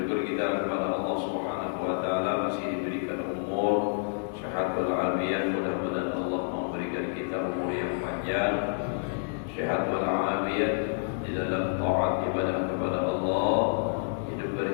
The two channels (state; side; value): silent; right; digital silence